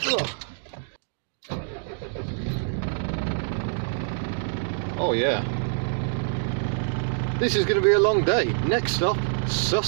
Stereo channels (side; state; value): left; silent; digital silence